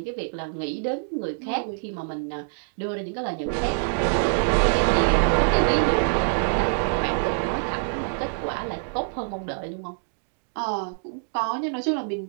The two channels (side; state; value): left; silent; digital silence